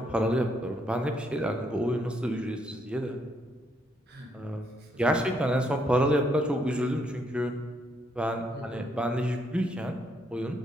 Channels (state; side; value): normal; both; correlation 0.73